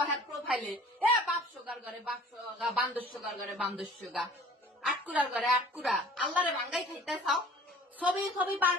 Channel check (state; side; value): normal; both; correlation 0.48